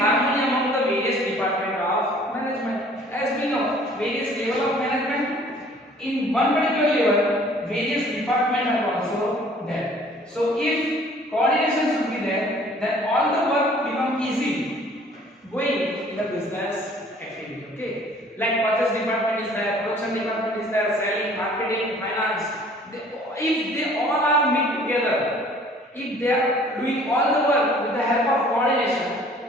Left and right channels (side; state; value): both; normal; correlation 0.54